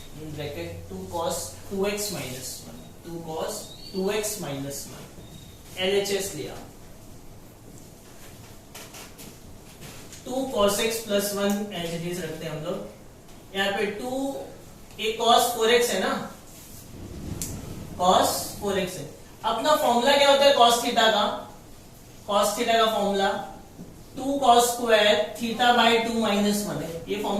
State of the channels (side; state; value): both; identical; correlation 1.00